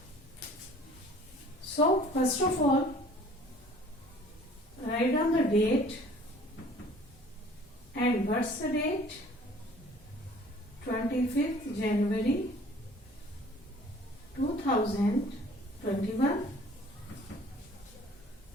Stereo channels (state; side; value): normal; both; correlation 0.51